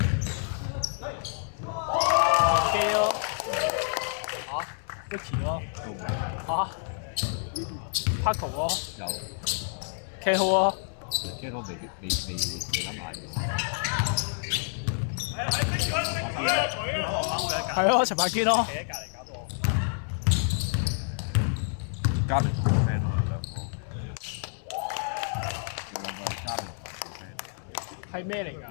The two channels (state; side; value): silent; right; 58 dB below the other